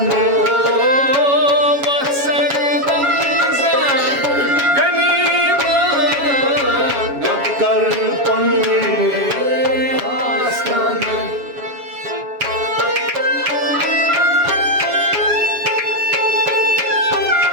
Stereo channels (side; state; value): left; late; 7.2 ms